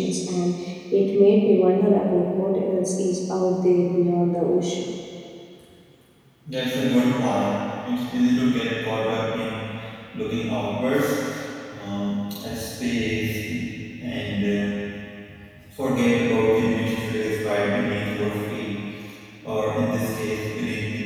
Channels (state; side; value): identical; both; correlation 1.00